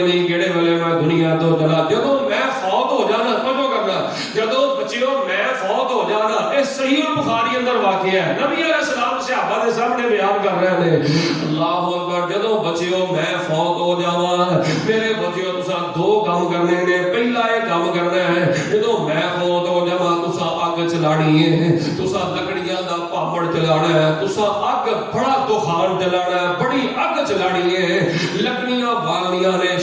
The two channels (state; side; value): identical; both; correlation 1.00